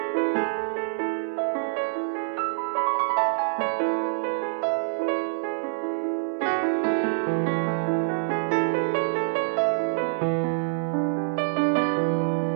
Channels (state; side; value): silent; left; 59 dB below the other